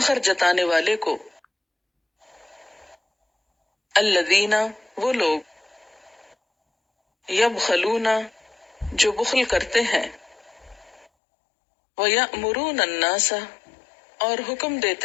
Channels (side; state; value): right; drops out; at 11.1 s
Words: جتانے والے کو، الذین، وہ لوگ، یبخلون، جو بخل کرتے ہیں، وَيَأْمُرُونَ النَّاسَ، اور حکم